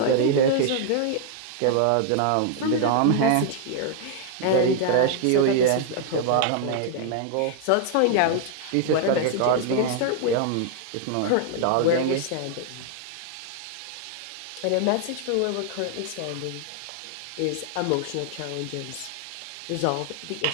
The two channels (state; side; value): different; both; correlation 0.00